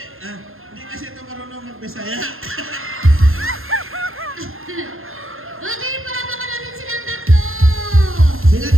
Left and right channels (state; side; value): late; left; 0.61 ms